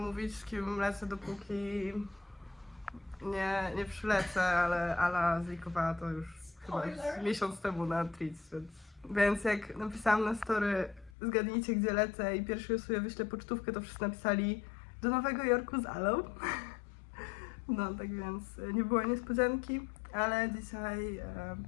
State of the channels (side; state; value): right; drops out; at 11.1 s